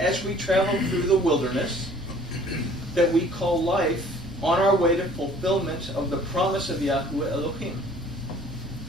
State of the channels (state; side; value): normal; both; correlation 0.53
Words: we travel through the wilderness that we call life, on our way to fulfillment of the promise of Yahuwah Elohim.